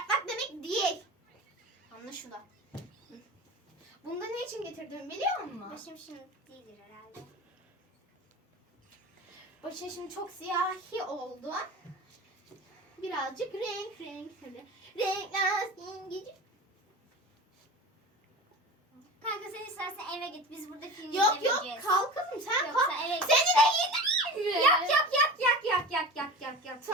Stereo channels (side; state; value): both; normal; correlation 0.33